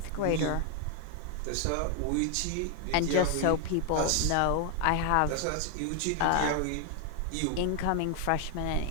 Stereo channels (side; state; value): both; different; correlation 0.01